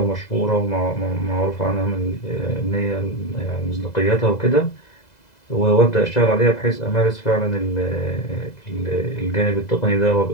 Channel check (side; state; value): right; late; 2.0 ms